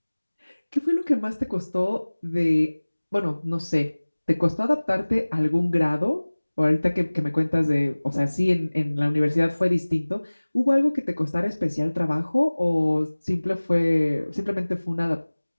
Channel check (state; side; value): inverted; both; correlation -1.00